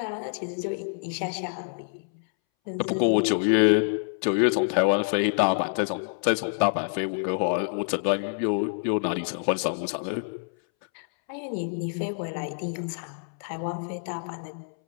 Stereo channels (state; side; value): silent; right; 60 dB below the other